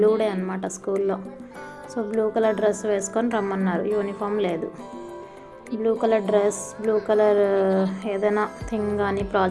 డే అనమాట స్కూల్లో. సో బ్లూ కలర్ డ్రెస్ వేసుకొని రమ్మన్నారు, యూనిఫామ్ లేదు. Blue colour dress, blue colour ఏదైనా థింగ్ కానీ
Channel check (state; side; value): identical; both; correlation 1.00